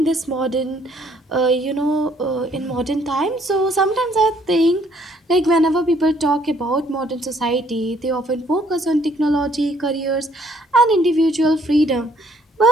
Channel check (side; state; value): both; normal; correlation 0.65